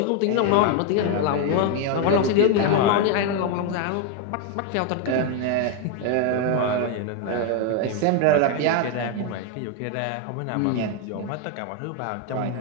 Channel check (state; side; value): different; both; correlation 0.01